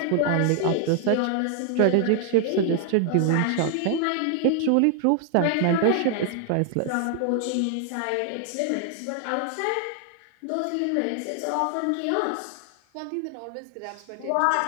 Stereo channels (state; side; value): different; both; correlation 0.00